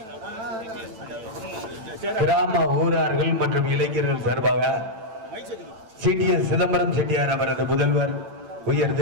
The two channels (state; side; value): late; left; 9.1 ms